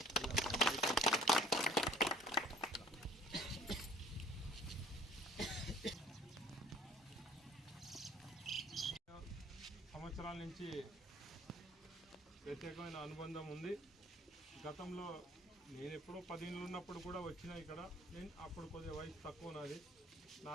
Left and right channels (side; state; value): both; normal; correlation 0.53